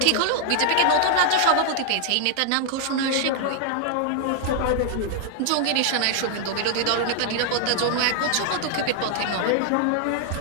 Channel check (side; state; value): both; different; correlation 0.00